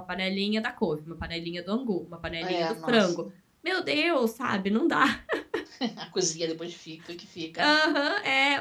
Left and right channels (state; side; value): identical; both; correlation 1.00